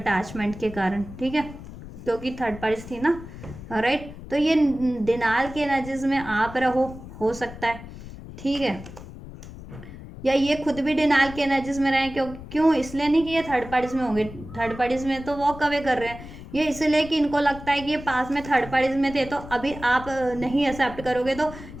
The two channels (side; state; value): left; noise; rumble, 14 dB below the sound